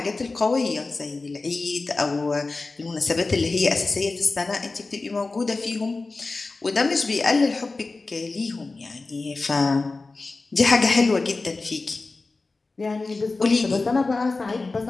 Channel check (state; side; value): quieter; right; 3.6 dB